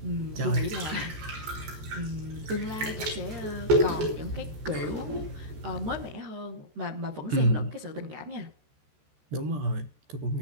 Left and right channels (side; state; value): left; late; 14 ms